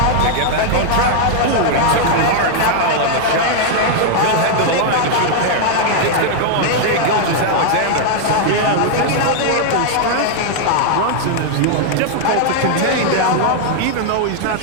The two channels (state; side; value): different; both; correlation 0.00